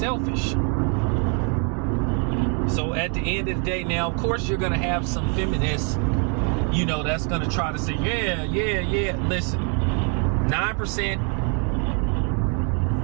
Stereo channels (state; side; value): quieter; left; 35.9 dB